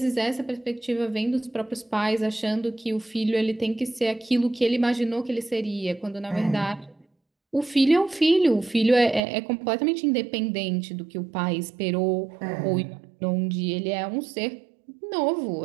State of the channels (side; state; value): left; drops out; at 9.2 s